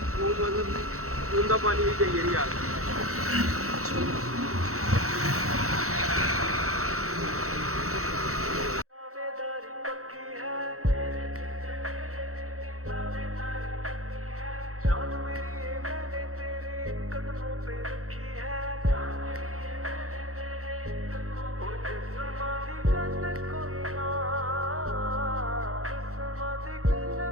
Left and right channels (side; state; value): left; late; 0.64 ms